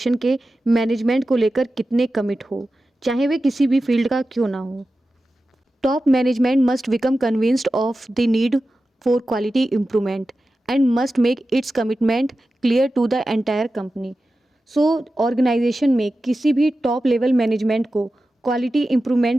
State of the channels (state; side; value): normal; both; correlation 0.93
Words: के management को लेकर कितने commit हो, चाहे वे किसी भी फील्ड का क्यों ना हो। Top management must become convinced of the need for quality improvement and must make its commitment clear to the entire company. So organisation में किसी भी टॉप लेवल मैनेजमेंट को क्वालिटी